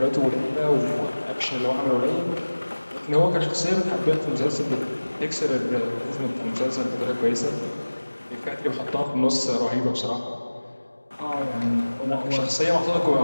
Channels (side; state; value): both; inverted; correlation -1.00